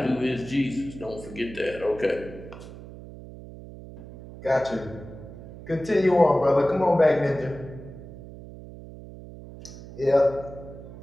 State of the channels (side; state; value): right; noise; hum, 15 dB below the sound